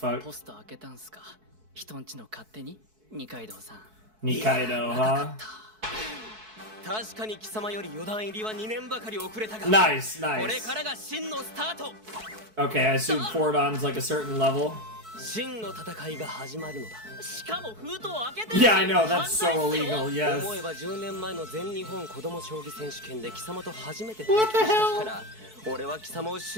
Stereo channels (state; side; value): late; left; 4.6 ms